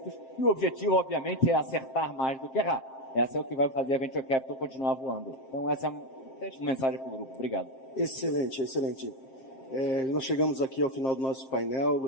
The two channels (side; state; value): right; late; 7.6 ms